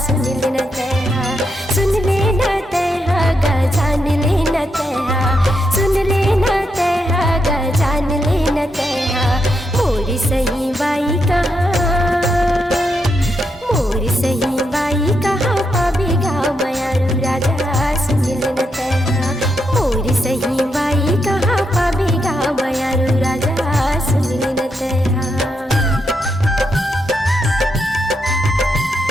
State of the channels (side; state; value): both; normal; correlation 0.82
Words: सुनिल न तैहा। सुन ले न तैहा गा जान ले न तैहा, सुन ले न तैहा गा जान ले न तैहा। मोरी सही बाई कहाँ, मोरी सही बाई कहाँ, पावी गा मयारू राजा सुनिल न तैहा। मोरी सही बाई कहाँ, पावी गा मयारू राजा सुनिल न तैहा।